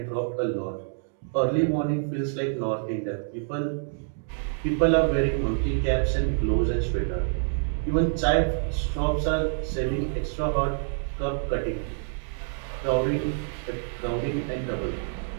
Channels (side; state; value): left; silent; digital silence